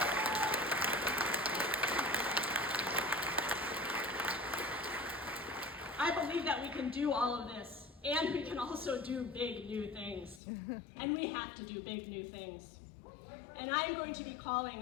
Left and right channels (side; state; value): right; drops out; at 10.4 s